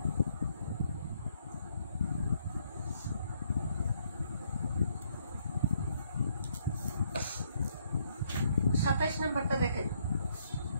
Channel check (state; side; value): inverted; both; correlation -0.70